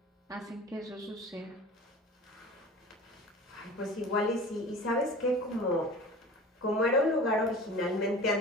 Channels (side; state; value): both; normal; correlation 0.39